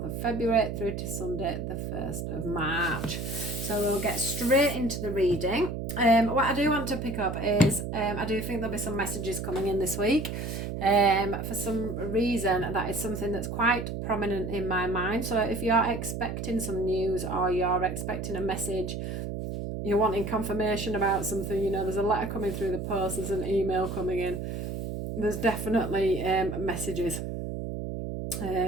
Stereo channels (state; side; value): noise; right; hum, 5 dB below the sound